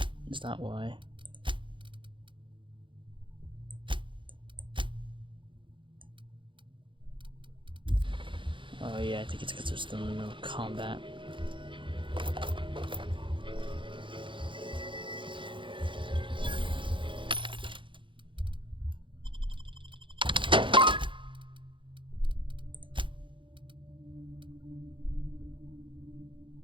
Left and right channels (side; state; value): left; late; 0.24 ms